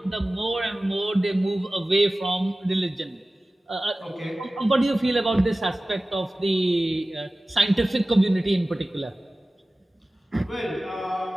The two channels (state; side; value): normal; both; correlation 0.97